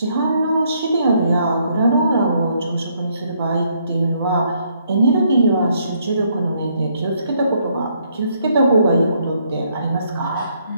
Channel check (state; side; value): inverted; both; correlation -0.71